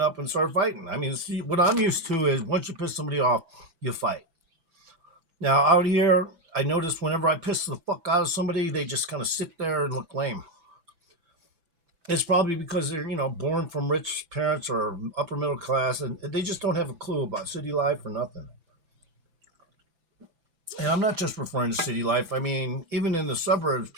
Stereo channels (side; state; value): left; late; 5.9 ms